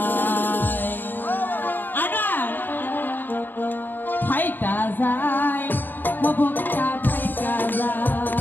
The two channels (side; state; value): right; late; 0.091 ms